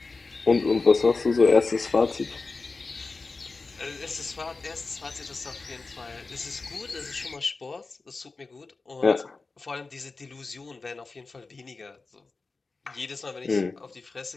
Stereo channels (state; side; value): quieter; right; 3.9 dB